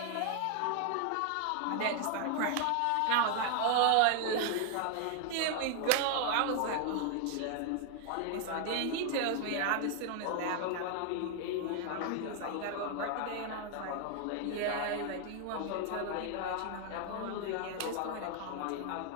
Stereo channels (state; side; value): different; both; correlation 0.00